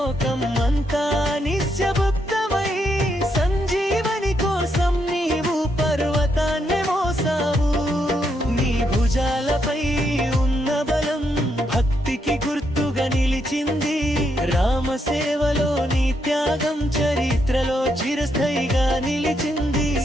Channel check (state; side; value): normal; both; correlation 0.78